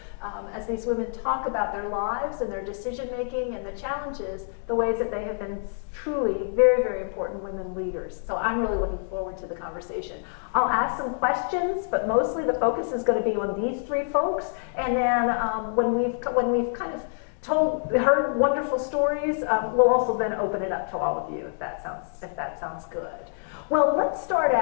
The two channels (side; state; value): right; silent; digital silence